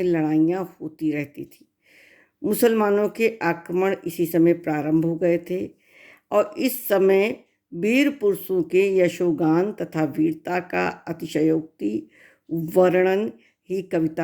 लड़ाइयाँ होती रहती थी। मुसलमानों के आक्रमण इसी समय प्रारंभ हो गए थे और इस समय वीर पुरुषों के यशोगान तथा वीरता का अतिशयोक्ति वर्णन ही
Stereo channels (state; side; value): identical; both; correlation 1.00